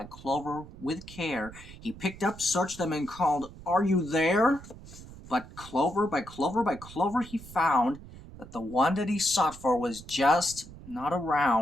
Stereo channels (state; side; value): noise; right; rumble, 17 dB below the sound